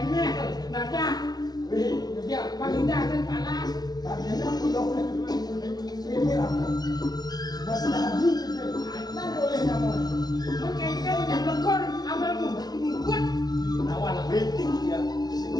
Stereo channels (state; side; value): late; right; 0.19 ms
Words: Nada. Wih, Ya, panggilan dan panas. kalian aku dong. Ini apa? Mas Nabi gitu. Nah boleh nyamun. Mengkengkel yang lekor, amal mengkut. Lawan lah. Beting ya. Sing